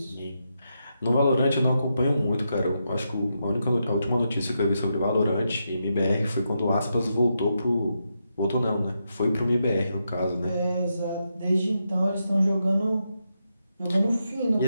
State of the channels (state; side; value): inverted; both; correlation -0.84